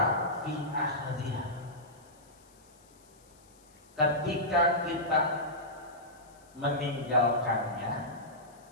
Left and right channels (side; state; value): left; noise; hiss, 28 dB below the sound